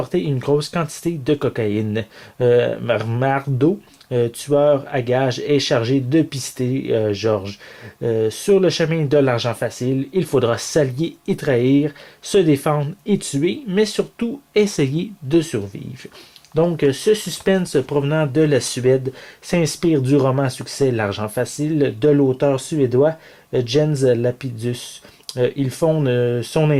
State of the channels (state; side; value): identical; both; correlation 1.00